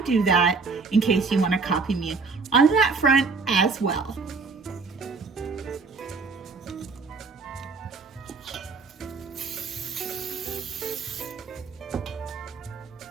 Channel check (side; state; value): left; quieter; 4.5 dB